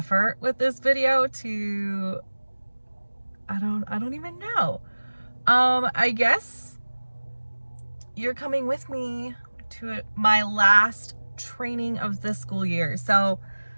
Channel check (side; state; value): both; inverted; correlation -1.00